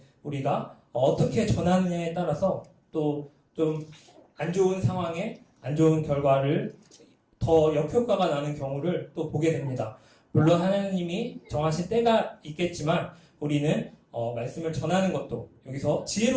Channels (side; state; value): both; identical; correlation 1.00